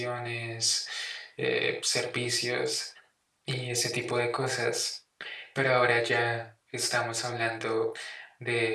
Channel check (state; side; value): identical; both; correlation 1.00